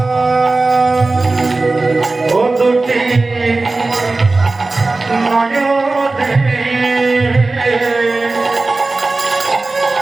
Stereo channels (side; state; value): left; quieter; 3.4 dB